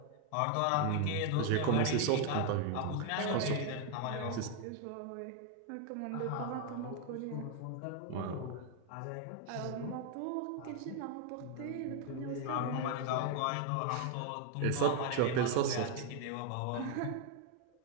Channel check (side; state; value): both; different; correlation 0.00